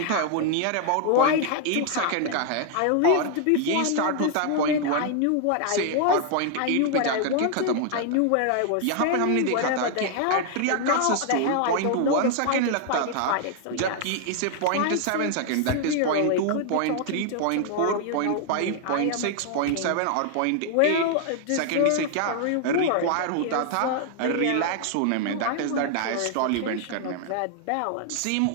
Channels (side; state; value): both; different; correlation 0.00